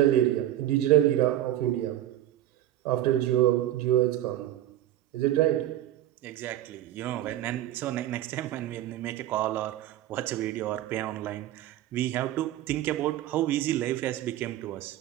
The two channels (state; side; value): quieter; left; 13.3 dB